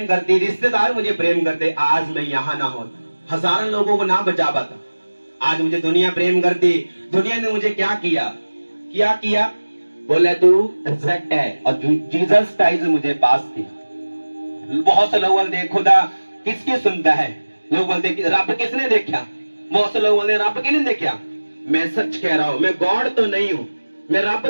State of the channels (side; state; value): both; inverted; correlation -1.00